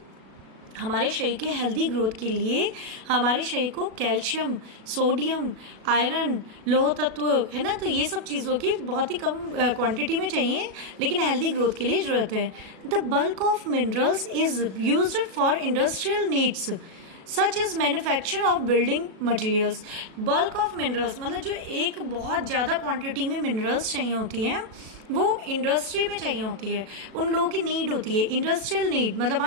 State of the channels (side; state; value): left; late; 37 ms